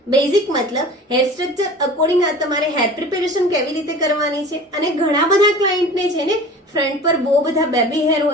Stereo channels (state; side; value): normal; both; correlation 0.40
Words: બેઝિક મતલબ હેર સ્ટ્રક્ચર અકોર્ડિંગ આ તમારે હેર પ્રિપેરેશન કેવી રીતે કરવાની છે. અને ઘણા બધા ક્લાયન્ટને છે ને ફ્રન્ટ પર બહુ બધા બેબી હેર